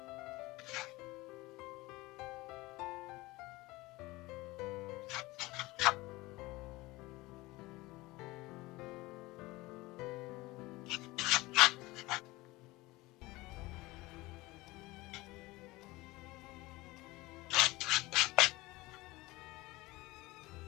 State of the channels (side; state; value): right; quieter; 20.7 dB